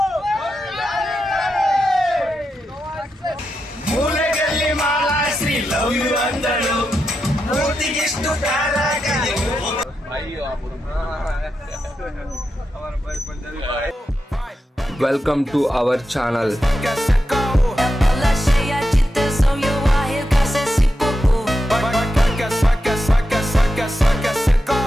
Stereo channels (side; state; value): both; normal; correlation 0.88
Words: ಮೂಲೆಗಲ್ಲಿ ಮಾಲಾಶ್ರೀ ಲವ್ ಯು ಅಂದಳು, ಮೂರ್ತಿಗಿಷ್ಟು ಕಾರಾಗಲಿ. Welcome to our channel.